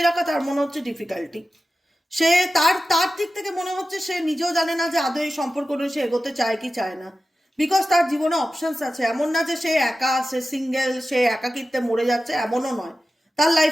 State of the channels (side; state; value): both; normal; correlation 0.94